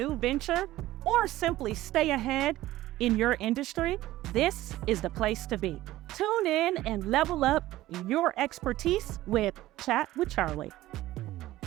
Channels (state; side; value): quieter; left; 16.0 dB